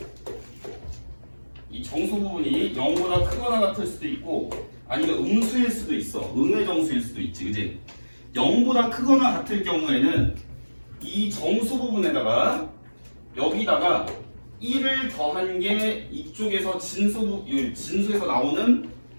이 정수 부분이 0보다 크거나 같을 수도 있고, 아니면 음수일 수도 있어. 음의 정수일 수도 있지. 그지? 0보다 크거나 같을 경우에는 이 정수 부분에다가 여기다가 1을 더한 게 이쪽에서 진수에서 나오는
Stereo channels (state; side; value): inverted; both; correlation -1.00